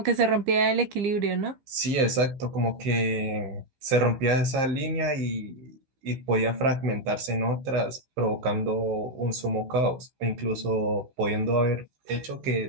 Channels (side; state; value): left; late; 15 ms